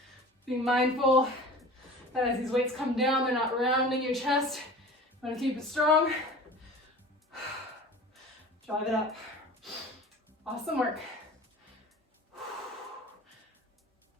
Being mindful that as these weights come down, they're not rounding your chest. You want to keep it strong. Drive it up. Awesome work.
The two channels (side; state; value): both; normal; correlation 0.40